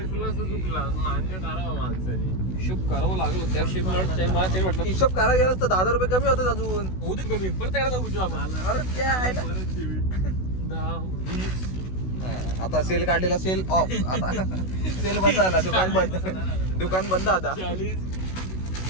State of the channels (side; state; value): right; late; 16 ms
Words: चुकला मान्य करावं माणसाने. हिशोब करावं लागलं त्या हिशोब मला ते वाटलं हिशोब करायला गेलास तर 10 रुपये कमी होतात अजून. होऊ दे कमी परत करायला जाऊ आपण. अरे क्या आहे ना. 10 20 आता सेल काढलेला सेल ऑफ. आता सेल बंद झाला. दुकान बंद आता. 40